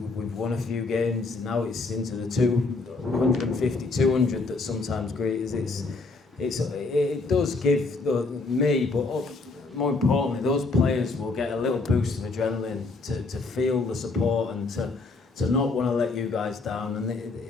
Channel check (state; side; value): quieter; right; 3.7 dB